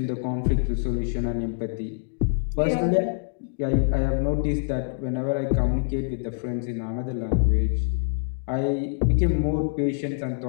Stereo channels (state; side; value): silent; right; digital silence